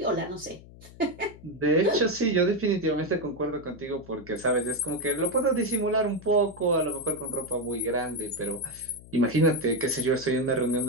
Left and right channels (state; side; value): noise; left; hum, 20 dB below the sound